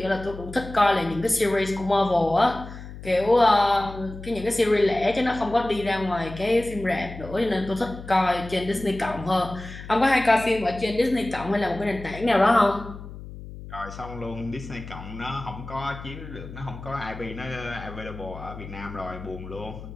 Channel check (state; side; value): noise; left; hum, 13 dB below the sound